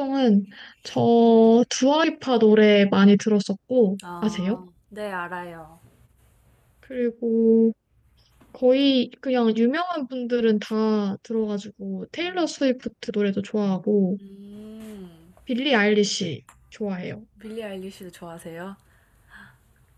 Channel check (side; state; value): both; identical; correlation 1.00